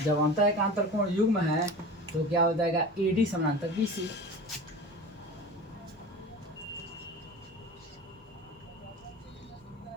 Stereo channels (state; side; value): normal; both; correlation 0.34